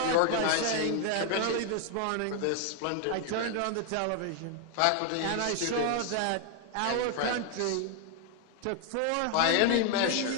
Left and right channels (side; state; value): both; different; correlation 0.00